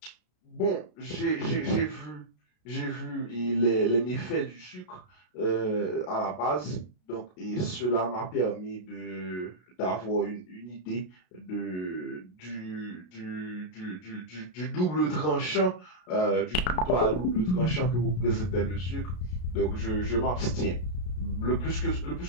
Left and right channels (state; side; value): late; right; 33 ms